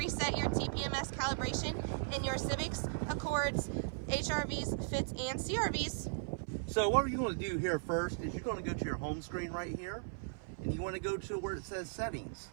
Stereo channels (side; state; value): left; silent; 53 dB below the other